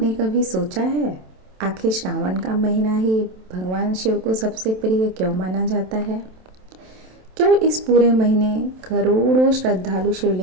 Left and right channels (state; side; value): late; left; 27 ms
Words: कभी सोचा है आखिर श्रावण का महीना ही भगवान शिव को सबसे प्रिय क्यों माना जाता है? क्यों इस पूरे महीने करोड़ों श्रद्धालु